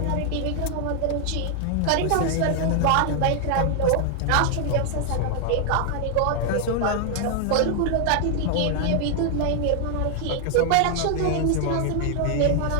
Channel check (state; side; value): different; both; correlation 0.00